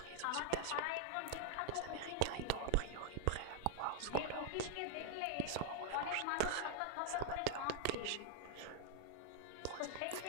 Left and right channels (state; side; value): different; both; correlation -0.01